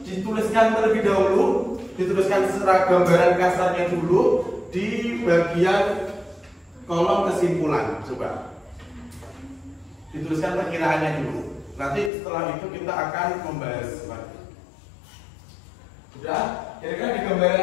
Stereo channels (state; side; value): drops out; right; at 12.1 s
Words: dituliskan terlebih dahulu, dituliskan secara gambaran kasarnya dulu di bagian kolom kesimpulan. Coba dituliskan perkiraannya dulu. Nanti setelah itu kita akan membahas lagi. Sudah? Kira-kira di